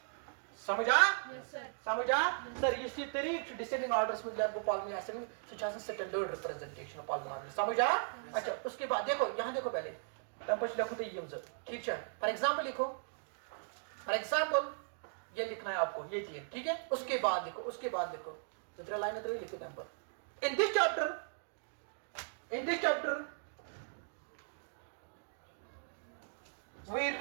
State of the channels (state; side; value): silent; left; digital silence